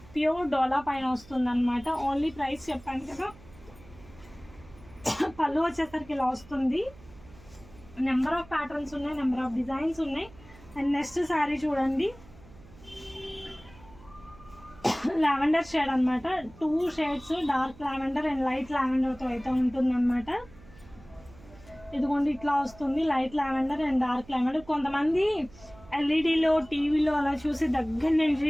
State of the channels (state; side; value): noise; right; hum, 22 dB below the sound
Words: ప్యూర్ డోలా పైన వస్తుంది అనమాట. ఓన్లీ ప్రైస్ చెప్పాను కదా. పళ్ళు వచ్చేసరికి ఇలా వస్తుంది. నెంబర్ ఆఫ్ ప్యాటర్న్స్ ఉన్నాయి, నెంబర్ ఆఫ్ డిజైన్స్ ఉన్నాయి. అండ్ నెక్స్ట్ శారీ చూడండి లావెండర్ షేడ్ అనమాట. 2 shades dark lavender and light లావెండర్తో అయితే ఉంటుంది అనమాట. ఇదిగోండి ఇట్లా వస్తుంది light lavender and dark lavender. కొంతమంది ఎల్ఈడిలో టీవీలో అలా చూసి దగ్గర